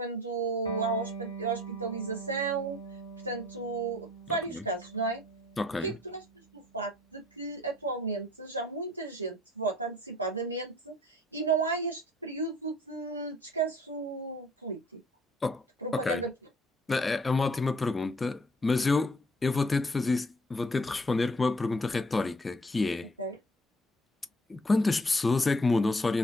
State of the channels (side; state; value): both; normal; correlation 0.57